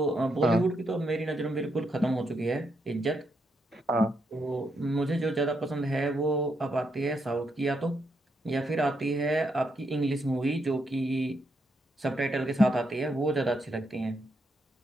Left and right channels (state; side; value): normal; both; correlation 0.80